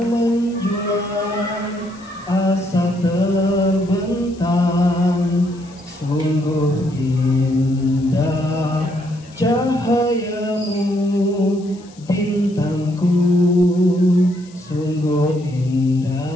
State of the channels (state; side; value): noise; left; hiss, 26 dB below the sound